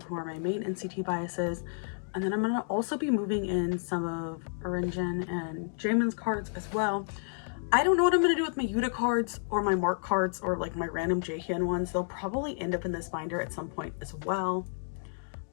who are my main NCT biases. And then I'm going to also be moving in some of Orinjin and Jaemin's cards as well. I don't know what I'm going to do with my Yuta cards or my Mark cards or like my random Jaehyun ones. They'll probably end up in this binder at some point as well.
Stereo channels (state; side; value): silent; right; digital silence